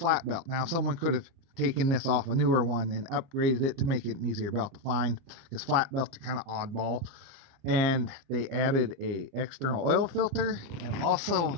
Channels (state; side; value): late; left; 30 ms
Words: belt. Now, someone could have taken this off a newer one and upgraded it to make it an easier belt to find, because flat belts are kind of oddball. And they added a external oil filter and also